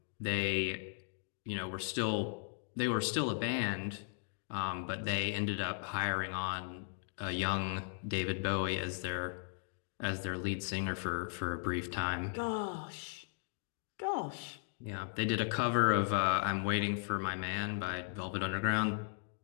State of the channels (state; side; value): silent; right; 53 dB below the other